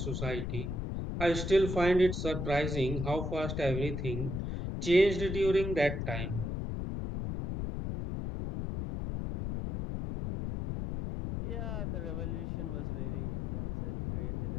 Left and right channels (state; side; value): noise; left; rumble, 3 dB below the sound